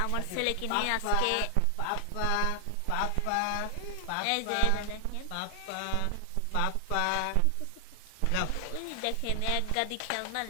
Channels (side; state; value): both; different; correlation 0.00